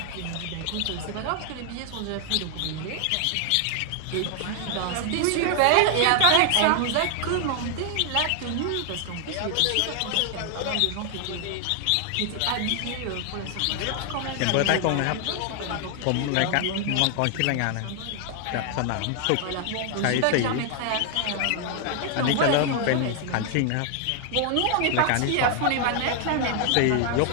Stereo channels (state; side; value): different; both; correlation 0.00